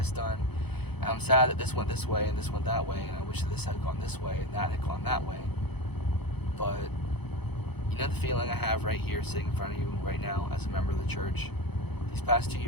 done. And I'm sad that this went this way and this went that way, and I wish that this had gone this way and that had gone that way. But you know the feeling I have right here sitting in front of you right now as a member of the church? These past 2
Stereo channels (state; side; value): late; right; 0.98 ms